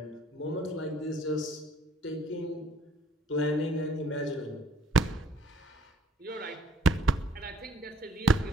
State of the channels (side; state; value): both; normal; correlation 0.61